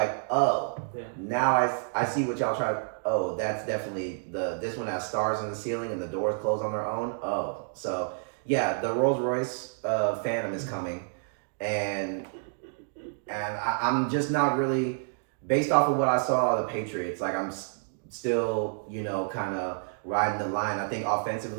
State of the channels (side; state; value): left; silent; digital silence